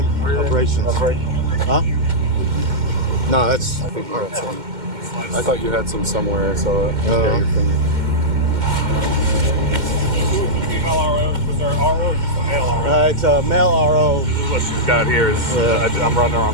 Operations. Huh? No, that's. I thought you had some somewhere, so Uh, female RO. Was there an RO or just a male RO? it's a male RO. What she's got here is I'm running her on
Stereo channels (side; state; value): left; late; 2.1 ms